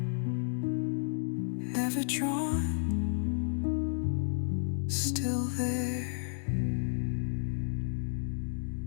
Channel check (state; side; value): silent; right; digital silence